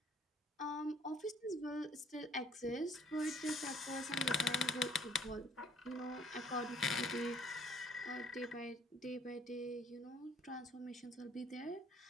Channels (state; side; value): normal; both; correlation 0.60